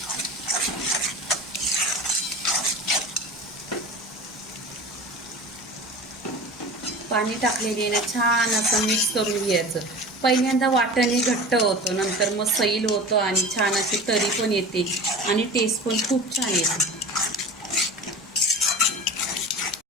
पाणी टाकलेले ना छान असं मिक्स करून घ्यायचं. पहिल्यांदा वाटणे घट्ट होतं, नंतर मग सैल होतं आणि छान अशी तरी पण येते आणि टेस्ट पण खूप छान येते.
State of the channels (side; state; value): both; normal; correlation 0.35